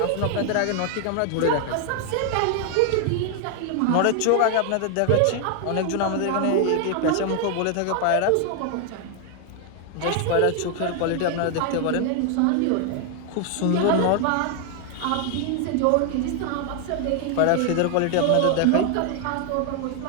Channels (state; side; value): different; both; correlation 0.00